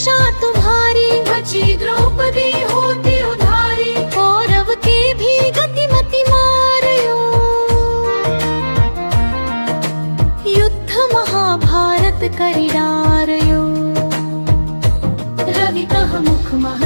तुम्हारी बची द्रौपदी होती उधारी कौरव के भी गतिमति मारयो युद्ध महाभारत करी डारयो रवि कह मुख मह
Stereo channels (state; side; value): inverted; both; correlation -1.00